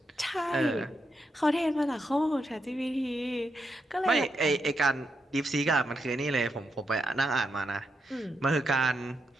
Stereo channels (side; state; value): both; normal; correlation 0.83